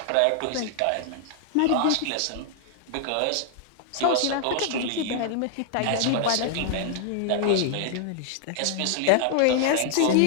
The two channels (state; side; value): different; both; correlation 0.00